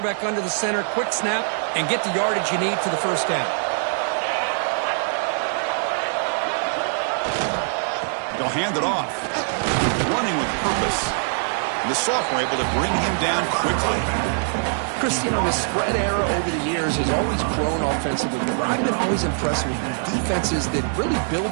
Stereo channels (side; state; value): left; silent; 63 dB below the other